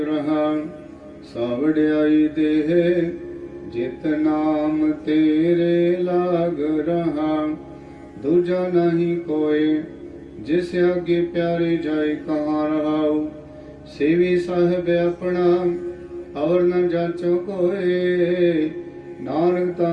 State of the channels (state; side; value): identical; both; correlation 1.00